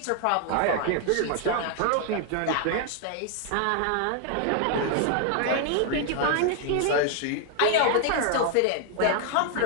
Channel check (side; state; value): both; different; correlation 0.00